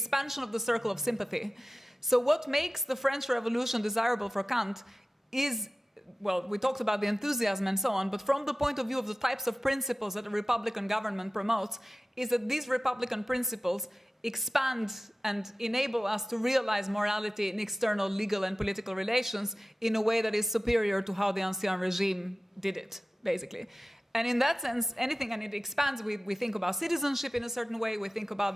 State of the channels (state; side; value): normal; both; correlation 0.96